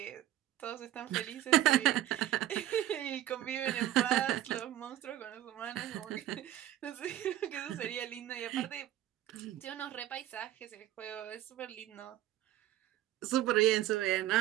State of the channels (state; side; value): quieter; left; 13.3 dB